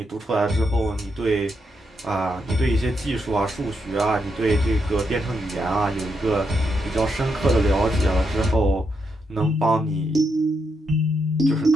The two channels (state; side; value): normal; both; correlation 0.81